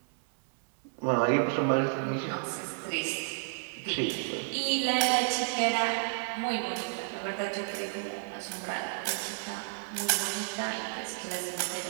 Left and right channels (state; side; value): silent; left; 57 dB below the other